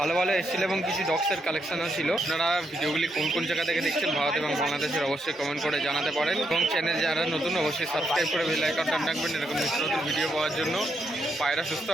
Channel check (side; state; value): both; normal; correlation 0.79